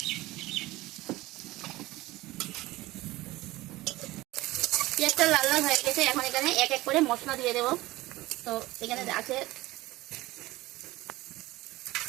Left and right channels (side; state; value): left; quieter; 18.8 dB